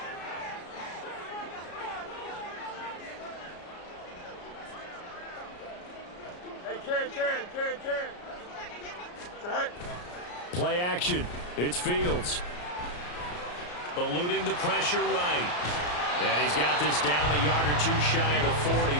Hey, Ken. Right. Play action. It's Fields. Eluding the pressure right. And he's got this down a yard or two shy of the 40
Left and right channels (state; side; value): late; right; 34 ms